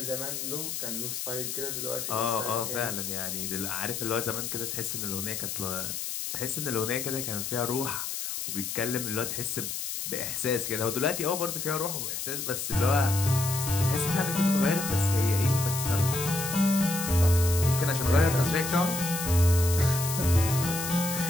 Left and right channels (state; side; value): noise; left; hiss, 4 dB below the sound